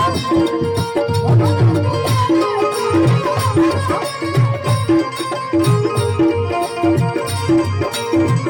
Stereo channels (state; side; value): identical; both; correlation 1.00